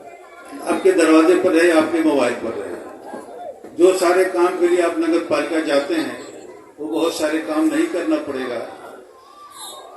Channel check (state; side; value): identical; both; correlation 1.00